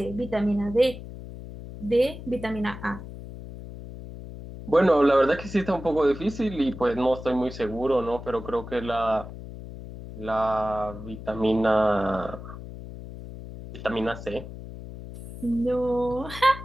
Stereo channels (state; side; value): noise; left; hum, 12 dB below the sound